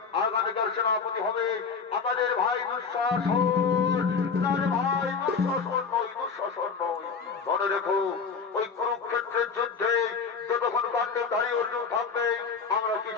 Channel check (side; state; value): right; quieter; 5.4 dB